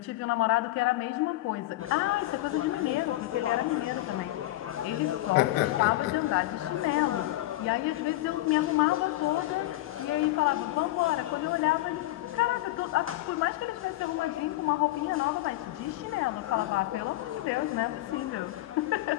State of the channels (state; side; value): quieter; right; 17.0 dB